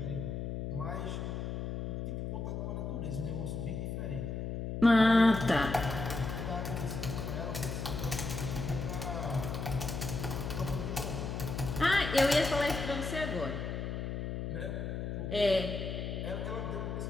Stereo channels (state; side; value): noise; left; hum, 4 dB below the sound